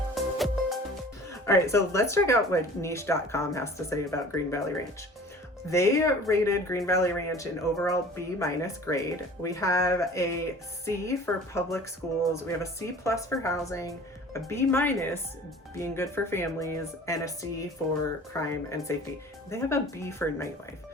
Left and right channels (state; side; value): normal; both; correlation 0.45